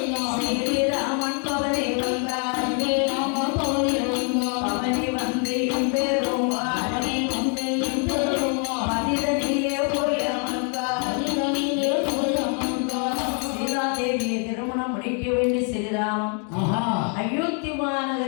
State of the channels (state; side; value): quieter; right; 39.8 dB